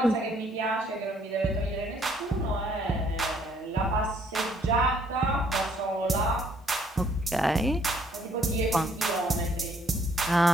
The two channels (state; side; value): normal; both; correlation 0.65